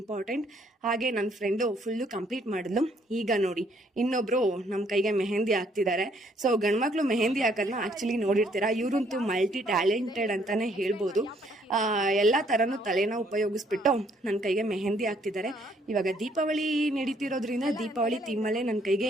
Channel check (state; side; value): normal; both; correlation 0.66